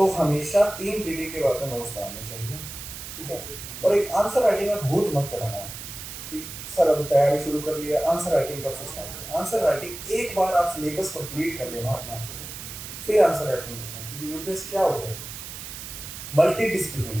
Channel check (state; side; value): noise; right; hiss, 10 dB below the sound